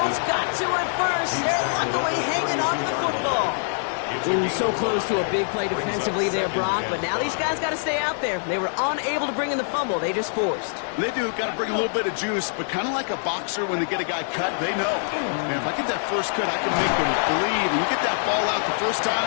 got to it first. They're luckily hanging on to the football. Ooh, so close to a big play defensively there, Brock, but now these guys got to stay out there. They were unable to bring in the fumble. They just forced. They do. Got to bring a little bit of juice, but kind of like a boxer when they get a guy cut, they know. Man, if I get that first cut, I can make him bleed. And you get that ball out the first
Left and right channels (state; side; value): silent; right; digital silence